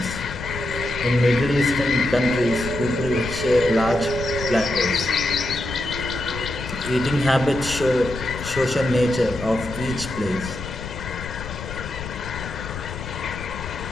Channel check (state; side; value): noise; left; rumble, 10 dB below the sound